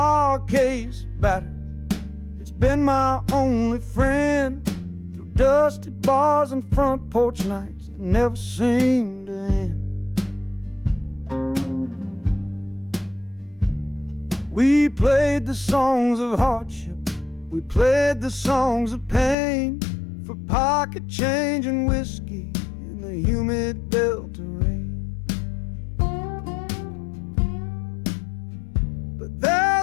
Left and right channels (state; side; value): drops out; right; at 19.4 s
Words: case battered, it's been my only friend through dusty bars and front porch nights that never seem to end. We played the songs of hardship, we played the songs of pain, for pocket change and whiskey in the humid Delta rain.